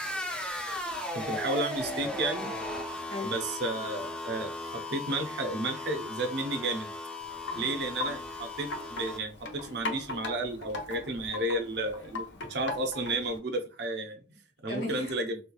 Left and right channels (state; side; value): normal; both; correlation 0.27